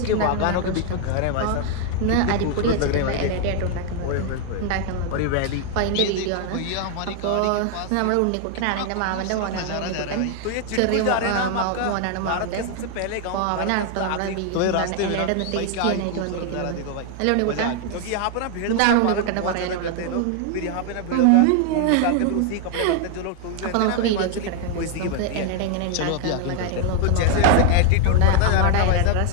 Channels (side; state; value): both; different; correlation 0.00